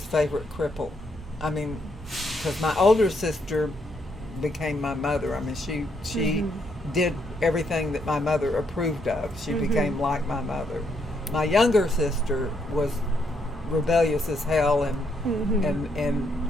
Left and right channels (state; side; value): normal; both; correlation 0.75